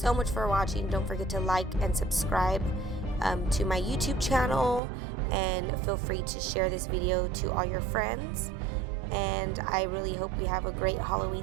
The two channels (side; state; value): left; drops out; at 4.8 s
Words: much for watching. Don't forget to like and subscribe to my YouTube channel, and feel free to share this video to all your friends. And I really hope we have a great